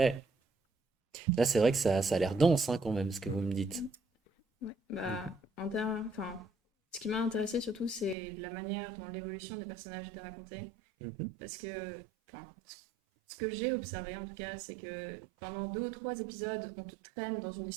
là, c'est vrai que ça a l'air dense, hein, quand même, ce que vous me dites. Ouais, bah, Mhm. enfin, ce qui m'a intéressé surtout, c'est la manière dont l'évolution des personnages était racontée. Mhm. Parce que, enfin, ce que j'ai observé en tout cas, c'est que pendant 2 ou 3 épisodes, on te traîne dans une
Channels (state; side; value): drops out; left; at 8.2 s